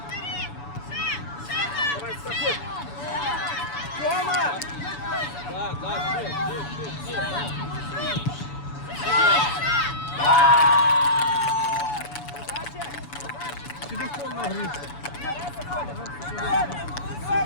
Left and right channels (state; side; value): late; right; 7.0 ms